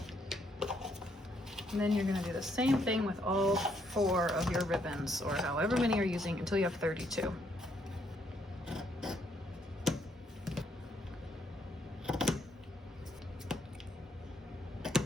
And then you're gonna do the same thing with all 4 of your ribbons, or however many you're using, until you have 32.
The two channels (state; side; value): normal; both; correlation 0.72